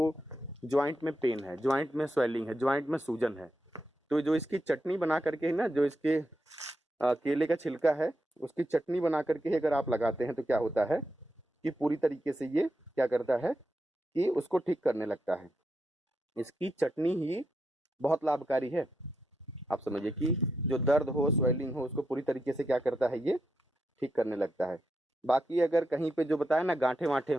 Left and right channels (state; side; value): normal; both; correlation 0.85